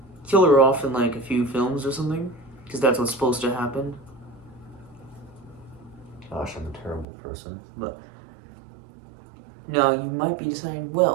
kill her off in like a few films or something, because that's what's supposed to happen. Gosh, I'm a terrible person. But now you might be deciding,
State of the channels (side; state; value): left; drops out; at 7.1 s